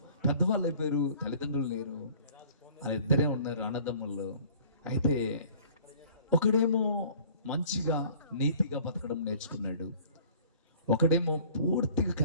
పెద్దవాళ్ళు అయిపోయారు, తల్లిదండ్రులు లేరు, 2 ఉన్నారు అన్నదమ్ముళ్ళు. అయితే ఒకడేమో మంచిగా నీతిగా బతకడం నేర్చుకున్నాడు, ఒకడేమో పూర్తిగా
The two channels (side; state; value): both; inverted; correlation -0.50